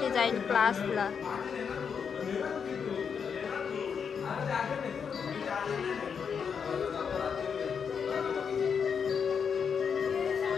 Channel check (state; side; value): quieter; right; 6.6 dB